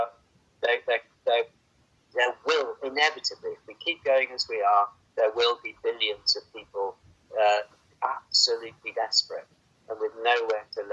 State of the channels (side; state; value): both; identical; correlation 1.00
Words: will inevitably, if we keep going as we are, there will be billions of people absolutely desperate and with nowhere to